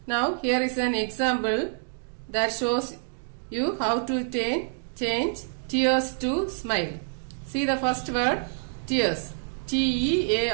Now, here is an example that shows you how to change tears to smile. See the first word, tears,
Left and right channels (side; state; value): left; silent; digital silence